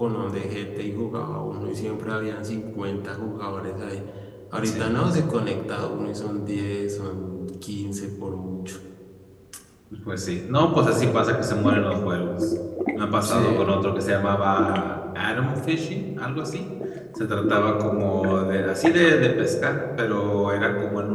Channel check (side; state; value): both; identical; correlation 1.00